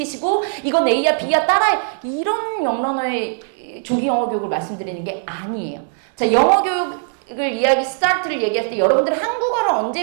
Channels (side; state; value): left; silent; digital silence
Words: 이건 A야 B야 따라해. 이런 영러너의 조기 영어 교육을 말씀드리는 게 아니에요. 자, 영어 교육 이야기 스타트를 얘기할 때 여러분들